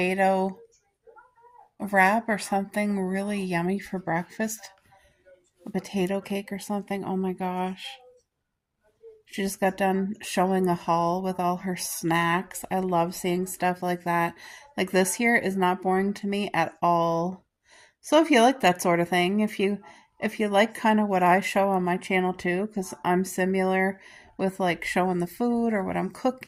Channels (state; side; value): identical; both; correlation 1.00